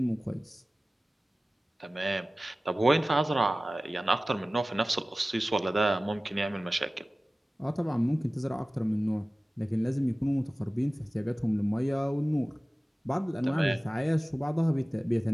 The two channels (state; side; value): normal; both; correlation 0.97